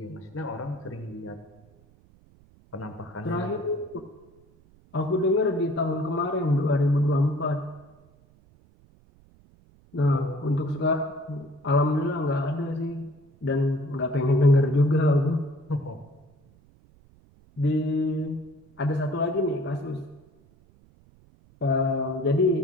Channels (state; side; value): noise; right; rumble, 29 dB below the sound